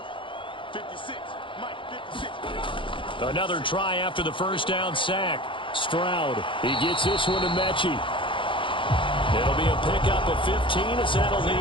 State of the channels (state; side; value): late; right; 0.25 ms